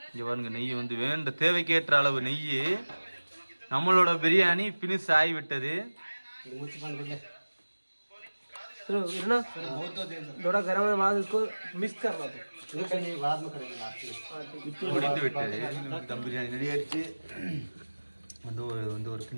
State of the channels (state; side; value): inverted; both; correlation -1.00